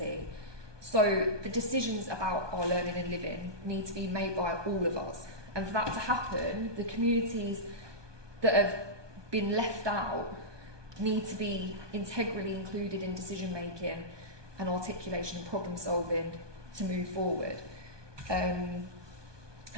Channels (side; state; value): left; late; 1.2 ms